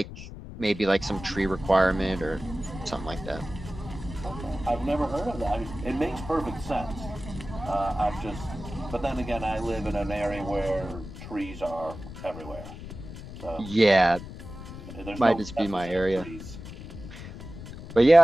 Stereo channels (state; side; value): noise; left; rumble, 12 dB below the sound